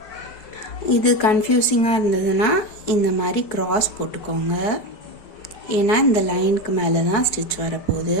இது கன்ஃபியூசிங்காக இருந்ததுன்னா இந்த மாதிரி கிராஸ் போட்டுக்கோங்க. ஏன்னா இந்த லைனுக்கு மேலே தான் ஸ்டிச் வரப்போகுது.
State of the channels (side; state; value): right; late; 5.1 ms